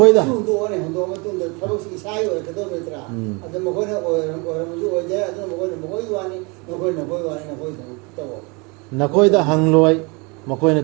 ꯍꯨꯟꯗꯣꯛꯑꯅꯤ ꯍꯨꯟꯗꯣꯛꯑ ꯃꯇꯨꯡꯗ ꯊꯕꯛꯁꯤ ꯏꯁꯥꯒꯤ ꯑꯣꯏꯔꯛꯀꯗꯧꯕ ꯅꯠꯇ꯭ꯔꯥ ꯑꯗꯨ ꯃꯈꯣꯏꯅ ꯑꯣꯏꯔꯝꯕꯁꯨ ꯑꯣꯏꯗꯦ ꯑꯗꯨꯅ ꯃꯈꯣꯏꯅ ꯃꯈꯣꯏꯒꯤ ꯋꯥꯅꯤ ꯅꯈꯣꯏ ꯋꯥꯅꯤ ꯅꯈꯣꯏ ꯊꯕꯛ ꯇꯧꯑꯣ ꯅꯈꯣꯏꯗ ꯍꯪꯂꯣꯏ ꯃꯈꯣꯏꯅ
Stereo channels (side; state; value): left; quieter; 29.3 dB